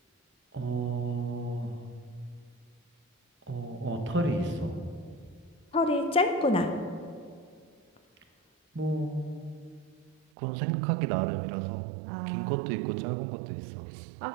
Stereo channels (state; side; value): drops out; left; at 10.2 s